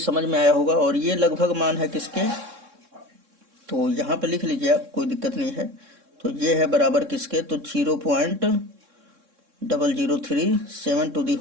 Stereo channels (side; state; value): left; late; 3.6 ms